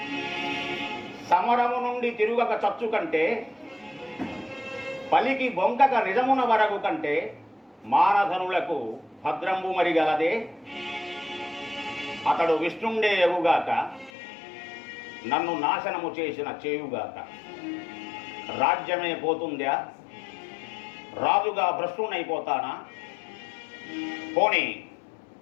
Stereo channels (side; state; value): right; drops out; at 14.1 s